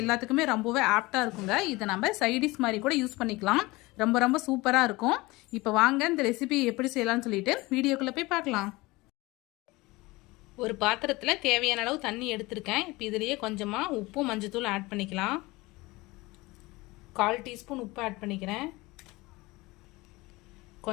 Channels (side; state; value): right; quieter; 21.9 dB